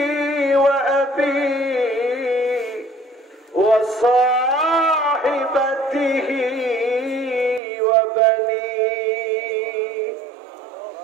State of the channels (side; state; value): left; drops out; at 7.6 s